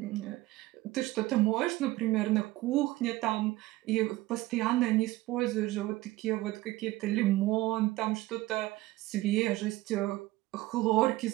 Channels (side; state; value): left; quieter; 18.0 dB